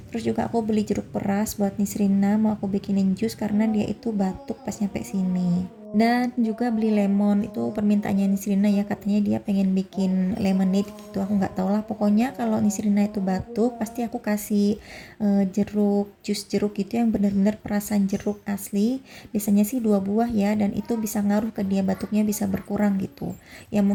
Terus juga aku beli jeruk peras buat Nisrina, mau aku bikinin jus karena dia itu batuk pas nyampe sini. Dan juga beli lemon, itu permintaannya Nisrina ya, katanya dia pengen bikin lemonade gitu. Aku nggak tahu lah, pokoknya kalau Nisrina itu batuk pasti aku kasih jeruk, jus jeruk gitu yang benar-benar perasan jeruk asli. Biasanya sih 2 buah ya, dan itu bisa ngaruh ke dia, batuknya bisa berkurang gitu ya,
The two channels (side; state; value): both; identical; correlation 1.00